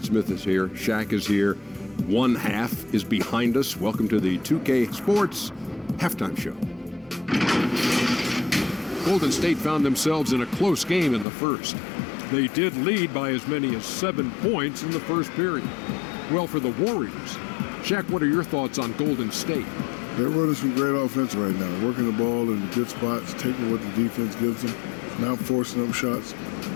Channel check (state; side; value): drops out; right; at 11.2 s